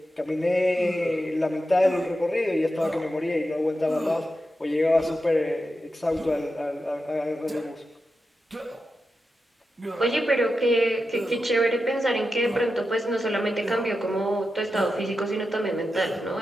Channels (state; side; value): normal; both; correlation 0.90